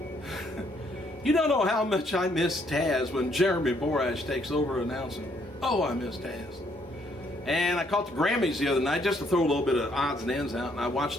You don't know how much I miss Taz when Jeremy Borash takes over announcing. Oh, I miss Taz. And I caught the Grammys the other night just to throw a little bit of odds and ends out, and I watched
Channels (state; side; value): normal; both; correlation 0.69